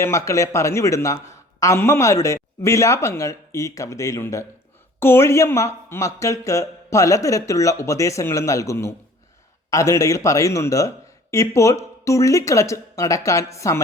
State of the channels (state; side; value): normal; both; correlation 0.50